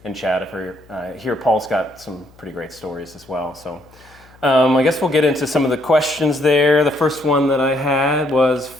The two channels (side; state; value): left; noise; hum, 27 dB below the sound